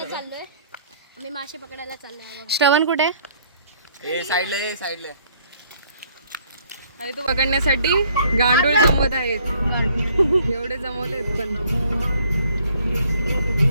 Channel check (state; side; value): inverted; both; correlation -0.62